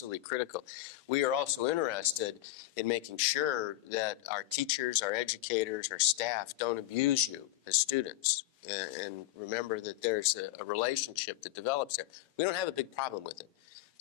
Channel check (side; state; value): right; quieter; 15.9 dB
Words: critical. We are also interested in making sure that our teachers, our educators, our staff don't abuse you as students. And remember that there's a relationship that develops there. We don't have a big problem with it.